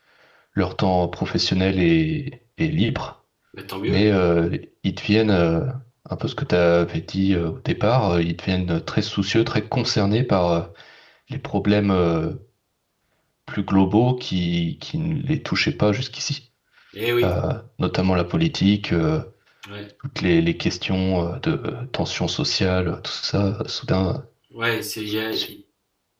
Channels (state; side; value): identical; both; correlation 1.00